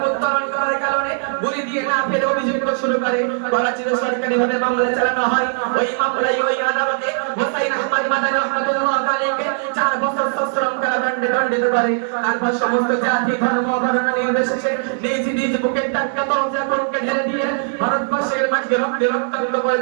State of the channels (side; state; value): left; silent; 66 dB below the other